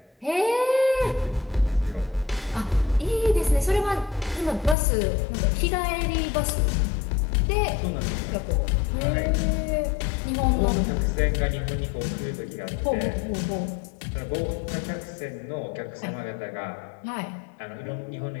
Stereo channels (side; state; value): right; drops out; at 4.8 s